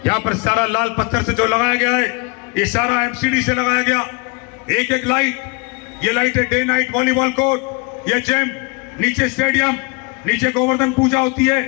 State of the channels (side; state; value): right; quieter; 30.2 dB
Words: यहां पर सारा लाल पत्थर से जो लगाया गया है, ये सारा एमसीडी से लगाया गया। एक एक लाइट, ये लाइट है डे नाइट वॉलीबॉल कोर्ट, ये जिम, नीचे स्टेडियम, नीचे गोवर्धन पूजा होती है,